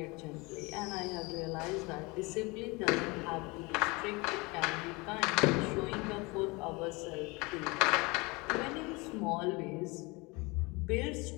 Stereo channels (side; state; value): right; quieter; 25.7 dB